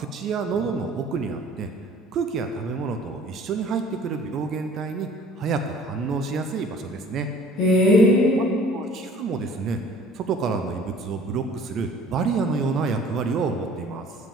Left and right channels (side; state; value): both; normal; correlation 0.50